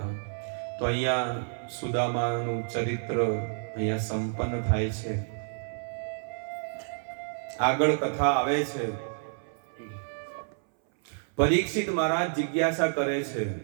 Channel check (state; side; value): silent; left; 58 dB below the other